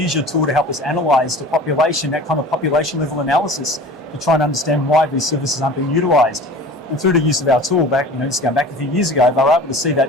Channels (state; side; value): normal; both; correlation 0.40